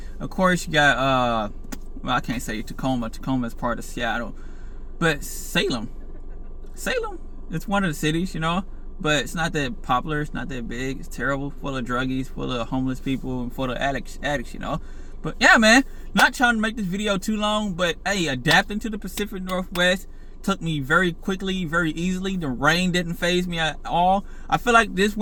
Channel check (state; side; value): identical; both; correlation 1.00